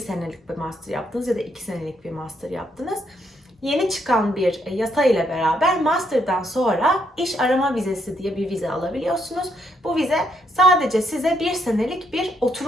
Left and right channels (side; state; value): both; normal; correlation 0.75